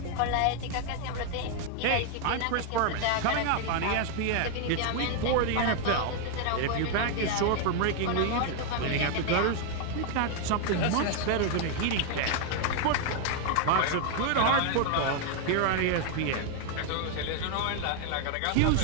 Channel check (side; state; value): both; different; correlation 0.00